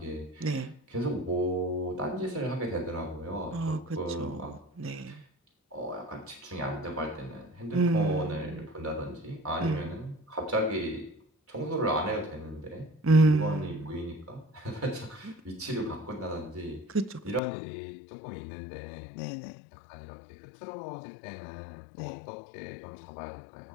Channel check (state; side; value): drops out; right; at 17.4 s